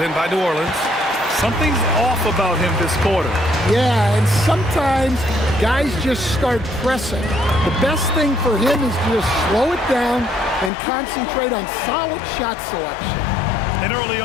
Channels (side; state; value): right; drops out; at 10.7 s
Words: by New Orleans. Something's off about him this quarter. Yeah, and sometimes guys just start pressing. The best thing for him is to just slow it down and concentrate on solid shot selection. And early